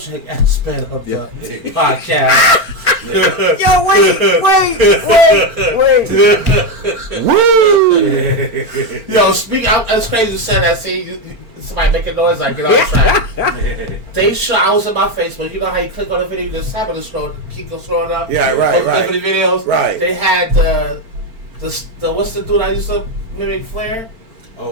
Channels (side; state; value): left; late; 4.4 ms